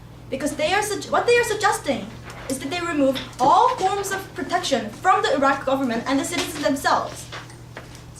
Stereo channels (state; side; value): identical; both; correlation 1.00